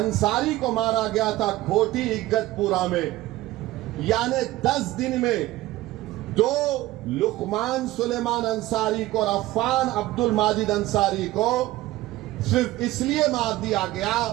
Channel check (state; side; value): quieter; left; 17.1 dB